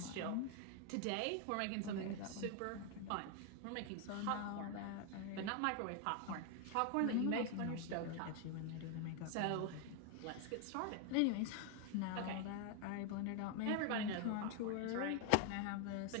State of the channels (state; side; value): different; both; correlation 0.01